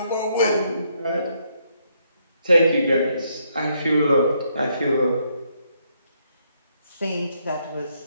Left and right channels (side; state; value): both; inverted; correlation -0.74